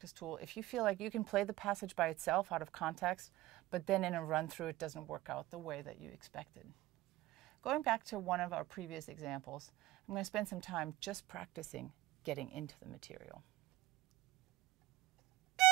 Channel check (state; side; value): quieter; left; 17.1 dB